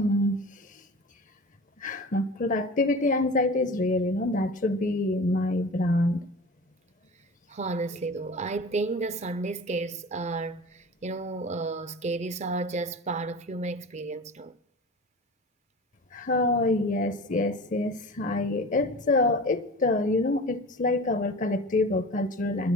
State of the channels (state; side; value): normal; both; correlation 0.36